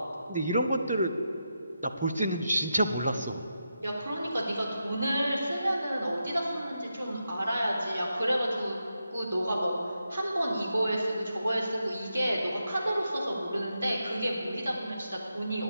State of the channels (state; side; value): inverted; both; correlation -0.86